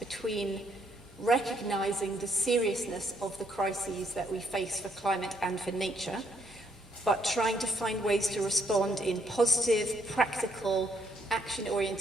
recognising the seriousness of the crises that we face for climate and for nature, but trying to find ways to respond in positive, practical,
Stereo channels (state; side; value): normal; both; correlation 0.72